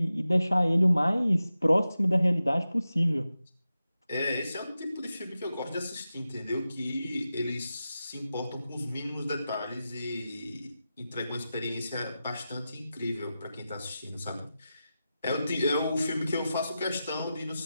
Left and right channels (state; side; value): inverted; both; correlation -0.92